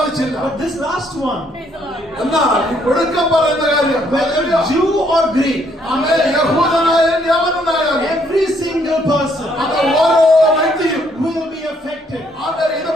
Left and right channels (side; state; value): both; normal; correlation 0.69